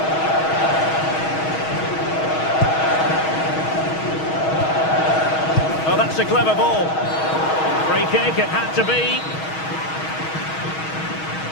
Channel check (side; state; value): right; late; 6.3 ms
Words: Oh, that's a clever ball. Free kick, it had to be.